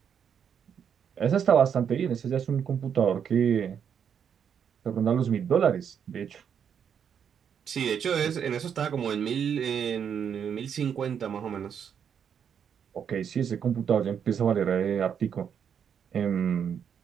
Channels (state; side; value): quieter; left; 7.8 dB